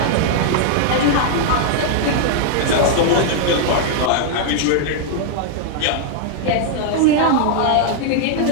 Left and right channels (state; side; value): different; both; correlation 0.00